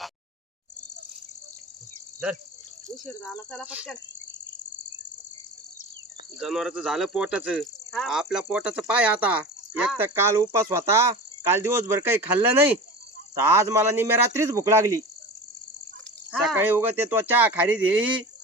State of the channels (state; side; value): normal; both; correlation 0.32